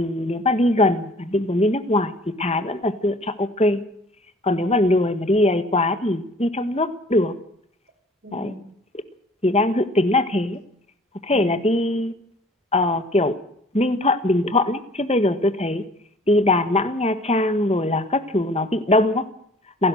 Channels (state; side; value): normal; both; correlation 0.51